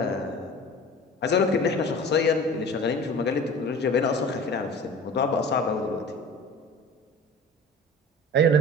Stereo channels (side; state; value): both; normal; correlation 0.40